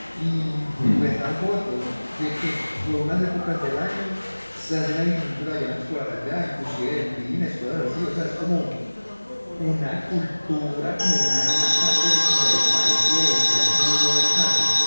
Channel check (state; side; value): inverted; both; correlation -1.00